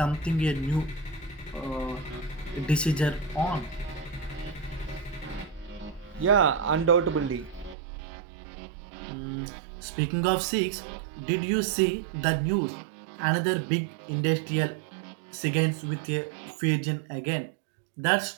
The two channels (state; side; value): drops out; left; at 7.8 s